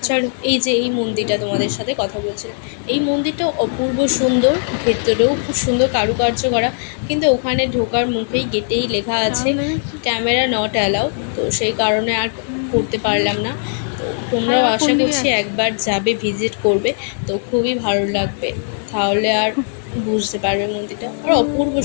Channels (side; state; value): right; silent; digital silence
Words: চলো, এই যে এই মন্দিরটা তোমাদের সাথে কথা বলছে, এই মন্দিরটা অপূর্ব সুন্দর, ভেতরেও খুব সুন্দর কারুকার্য করা, কিন্তু ওখানে ঢোকার মুখেই গেটেই লেখা আছে ক্যামেরা নট অ্যালাউ, তো সেই কারণে আর করতে পারলাম না। তো তোমরাও আশা করছি একবার যাবে, ভিজিট করবে, তো খুবই ভালো লাগবে, তাহলে আর বুঝতে পারবে মন্দিরটা, আর অপূর্ব